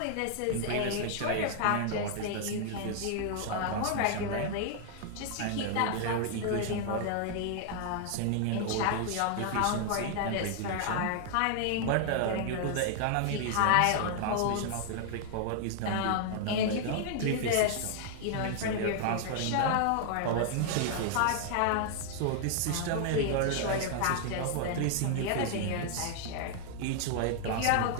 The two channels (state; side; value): different; both; correlation 0.00